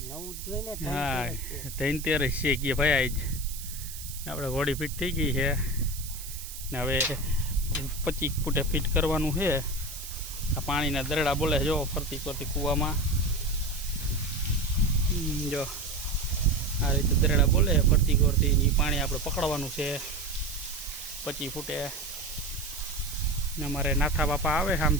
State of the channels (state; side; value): noise; right; hiss, 11 dB below the sound